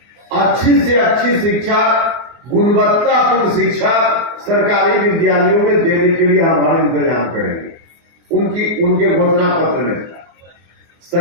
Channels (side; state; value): left; late; 24 ms